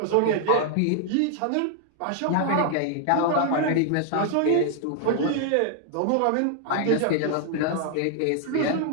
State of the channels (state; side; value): different; both; correlation -0.01